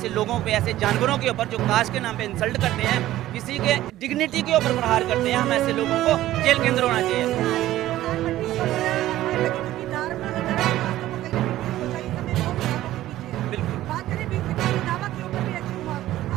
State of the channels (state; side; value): quieter; left; 14.6 dB